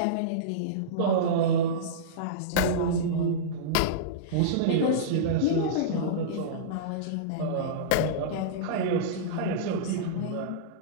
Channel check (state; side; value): different; both; correlation -0.05